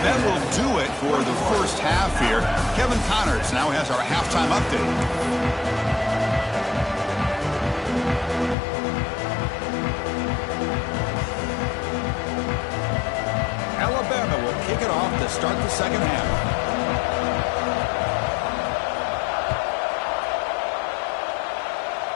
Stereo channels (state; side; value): drops out; right; at 8.6 s